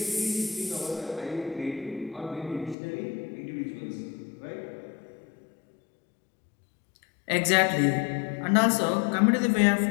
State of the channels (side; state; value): right; drops out; at 2.8 s